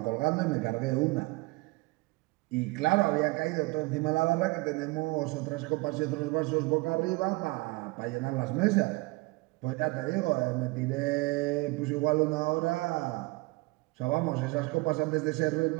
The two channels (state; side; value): quieter; left; 24.2 dB